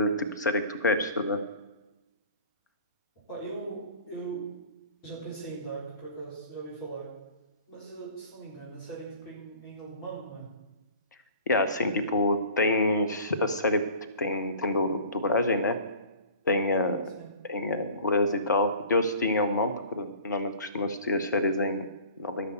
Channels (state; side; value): inverted; both; correlation -0.45